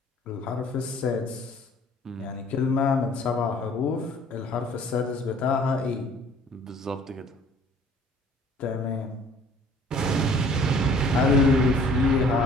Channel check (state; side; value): normal; both; correlation 0.54